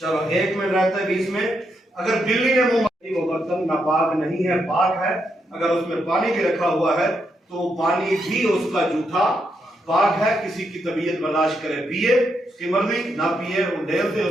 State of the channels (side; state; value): both; normal; correlation 0.80